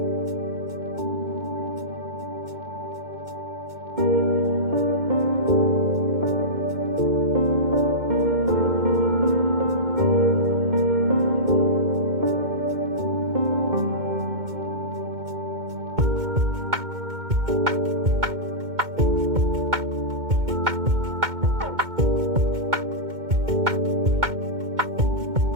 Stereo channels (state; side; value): late; left; 2.2 ms